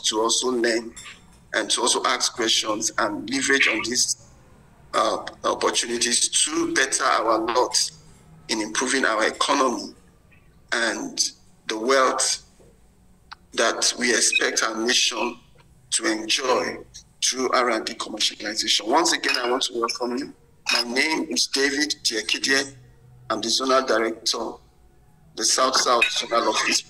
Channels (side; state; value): both; identical; correlation 1.00